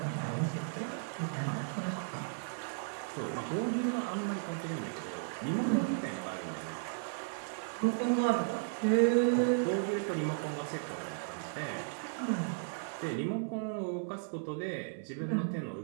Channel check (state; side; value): silent; left; 54 dB below the other